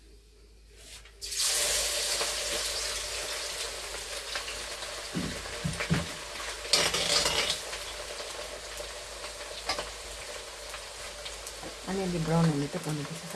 अलिअलि ब्राउन हुने त गर्नुपर्छ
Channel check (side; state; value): both; identical; correlation 1.00